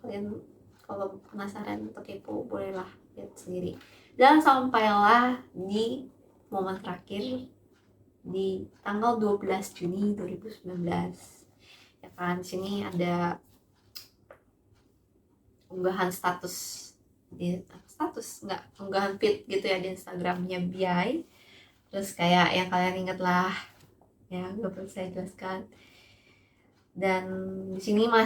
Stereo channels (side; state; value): both; identical; correlation 1.00